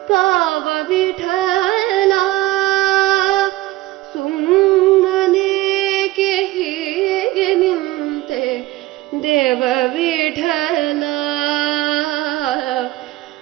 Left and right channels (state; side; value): quieter; left; 17.7 dB